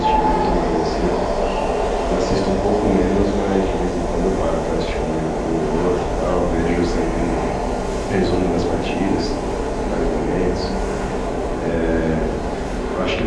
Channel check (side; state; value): both; identical; correlation 1.00